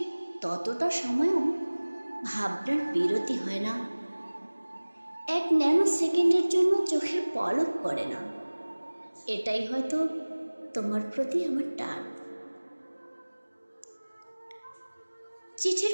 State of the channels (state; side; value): inverted; both; correlation -1.00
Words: ততটা সময়ও ভাবনার বিরতি হয় না। এক ন্যানো সেকেন্ডের জন্য চোখের পলক পড়ে না। এটাই হয়তো তোমার প্রতি আমার টান। চিঠির